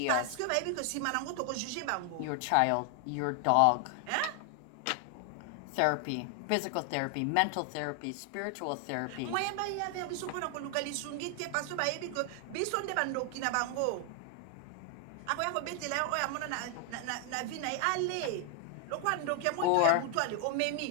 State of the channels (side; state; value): both; different; correlation 0.00